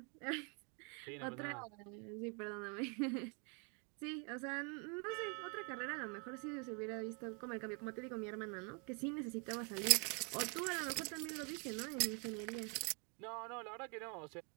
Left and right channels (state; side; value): quieter; left; 36.1 dB